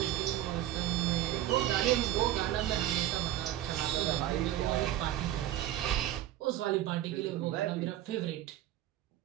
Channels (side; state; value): left; quieter; 13.2 dB